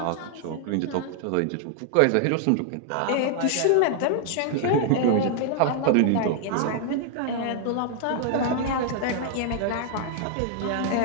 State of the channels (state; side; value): different; both; correlation 0.00